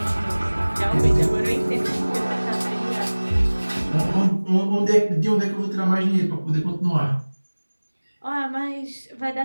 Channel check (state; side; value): inverted; both; correlation -1.00